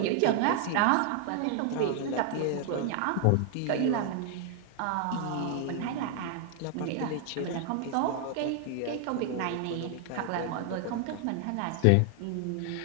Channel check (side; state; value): both; different; correlation 0.00